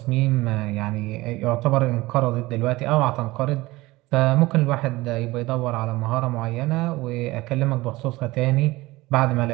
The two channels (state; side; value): quieter; left; 19.9 dB